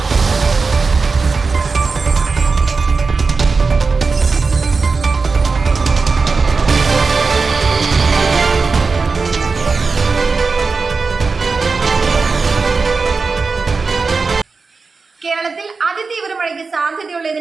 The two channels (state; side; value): quieter; left; 4.4 dB